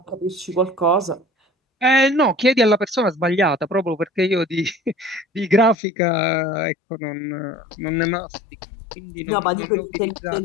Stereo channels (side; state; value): right; drops out; at 5.8 s